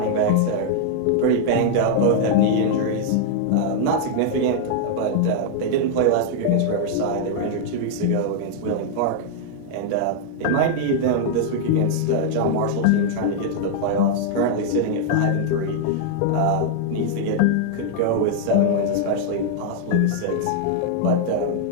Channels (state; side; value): different; both; correlation -0.01